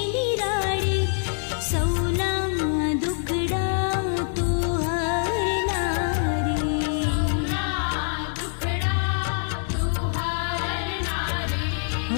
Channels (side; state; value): right; silent; 57 dB below the other